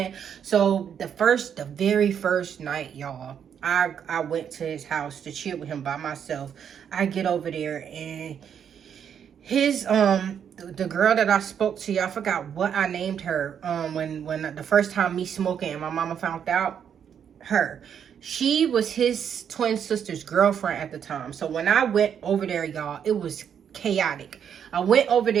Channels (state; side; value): quieter; left; 8.2 dB